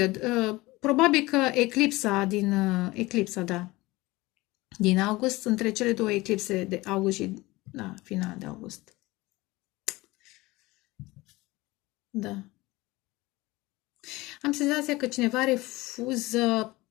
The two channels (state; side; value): quieter; right; 20.7 dB